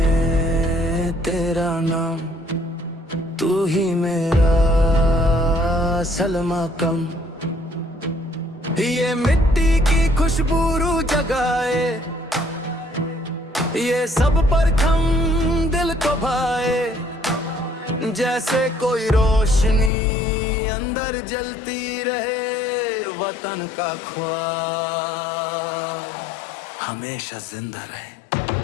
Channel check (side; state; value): right; drops out; at 19.9 s